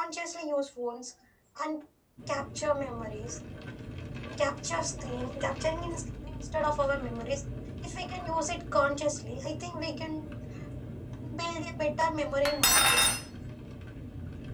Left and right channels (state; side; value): identical; both; correlation 1.00